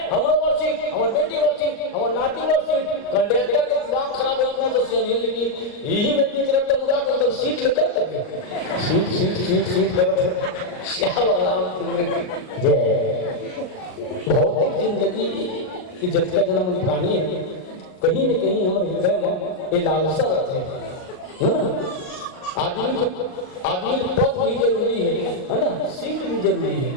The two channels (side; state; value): right; late; 38 ms